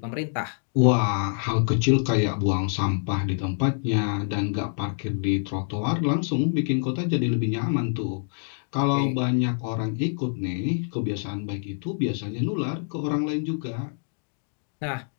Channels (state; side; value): silent; right; digital silence